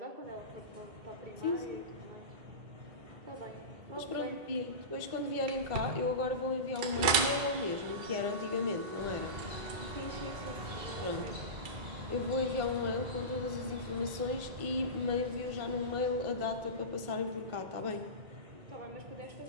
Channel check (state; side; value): late; left; 2.6 ms